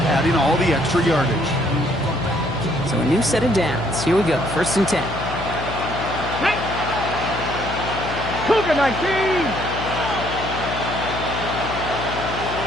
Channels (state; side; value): noise; left; hum, 8 dB below the sound